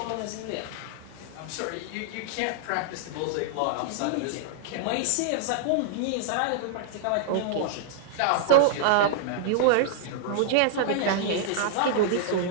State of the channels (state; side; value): different; both; correlation -0.01